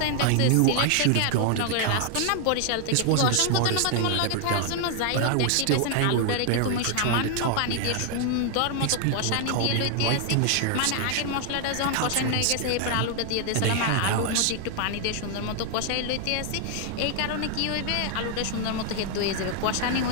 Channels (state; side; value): different; both; correlation 0.00